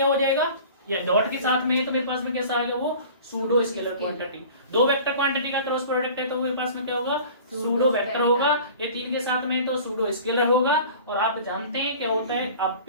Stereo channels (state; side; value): inverted; both; correlation -0.43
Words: हो जाएगा, या डॉट के साथ में है तो मेरे पास में कैसा आएगा, वो सूडो स्केलर क्वांटिटी। दो वेक्टर क्वांटिटी का क्रॉस प्रोडक्ट है तो मेरे पास में क्या होगा, सूडो वेक्टर होगा। ये तीन के साथ में तो सूडो स्केलर होगा। और आप जानते हैं क्या होता है, आप